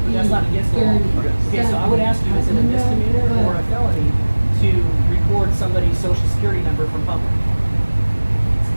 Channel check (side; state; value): both; inverted; correlation -1.00